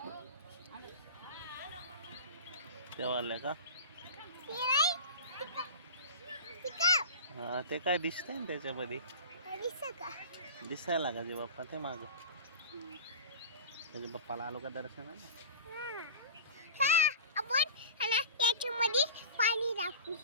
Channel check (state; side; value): inverted; both; correlation -0.34